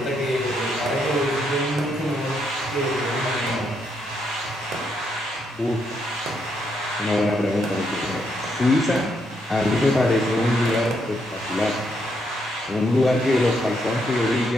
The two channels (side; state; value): both; normal; correlation 0.77